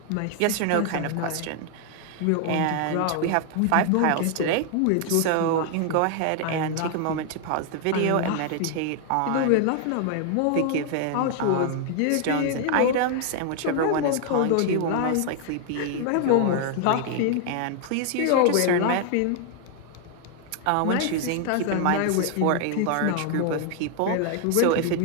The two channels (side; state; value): both; different; correlation 0.00